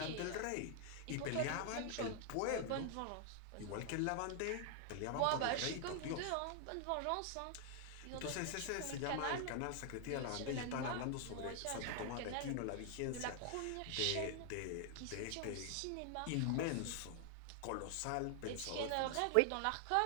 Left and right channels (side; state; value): both; different; correlation 0.00